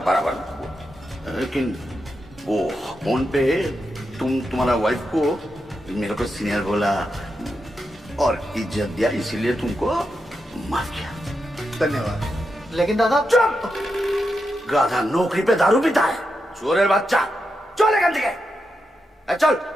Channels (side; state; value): both; normal; correlation 0.86